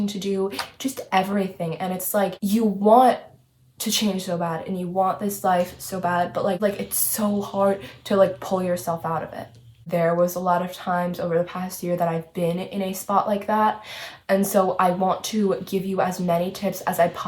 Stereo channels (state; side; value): identical; both; correlation 1.00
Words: to do, just everything. And it's like you want to change so bad and you want this life so bad, but like it's so hard to like pull yourself out of it. There was a lot of times over the past year that I've been in a spot like that. And so I want to give you as many tips as I